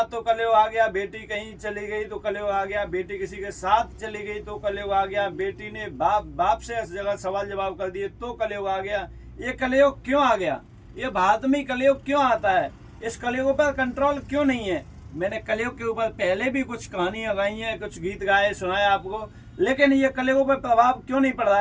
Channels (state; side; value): identical; both; correlation 1.00